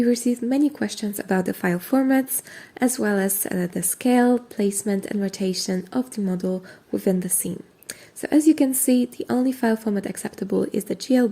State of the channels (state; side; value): identical; both; correlation 1.00